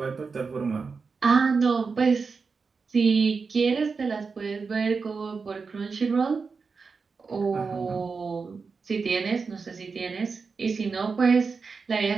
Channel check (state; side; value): quieter; left; 4.9 dB